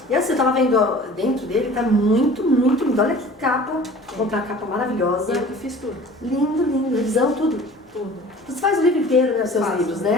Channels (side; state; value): both; normal; correlation 0.44